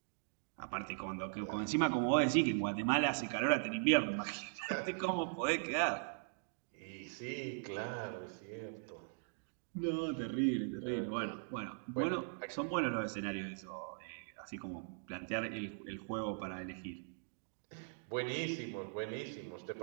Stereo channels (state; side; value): silent; left; digital silence